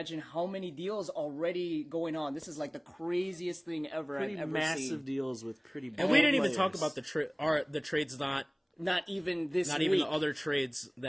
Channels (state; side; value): identical; both; correlation 1.00